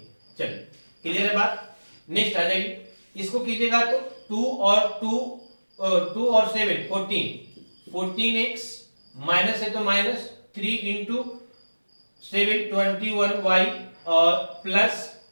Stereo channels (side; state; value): both; inverted; correlation -1.00